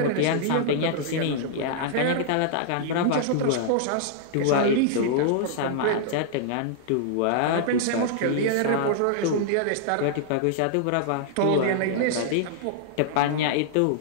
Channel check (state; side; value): different; both; correlation -0.01